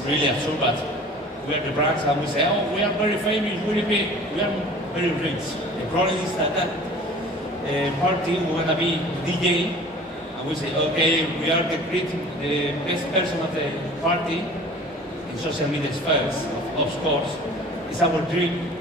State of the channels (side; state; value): both; normal; correlation 0.45